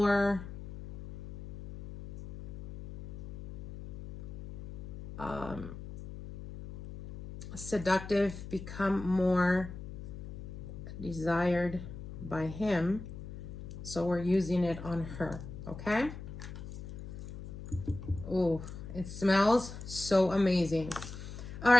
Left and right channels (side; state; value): left; noise; hum, 11 dB below the sound